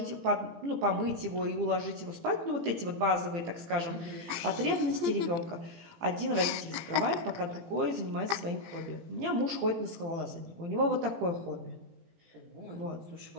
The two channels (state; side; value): late; left; 18 ms